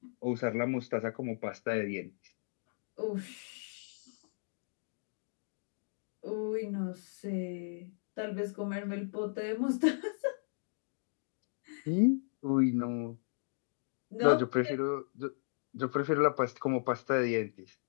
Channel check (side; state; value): right; silent; digital silence